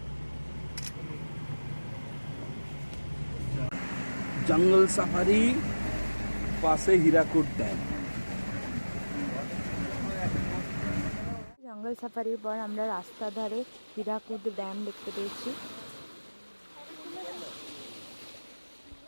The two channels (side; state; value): both; inverted; correlation -1.00